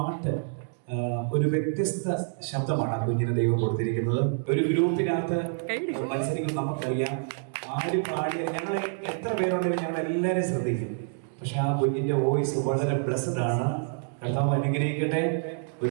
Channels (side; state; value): left; silent; digital silence